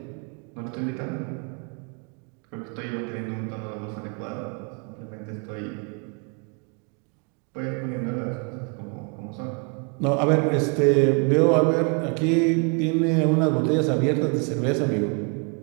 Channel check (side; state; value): left; quieter; 35.9 dB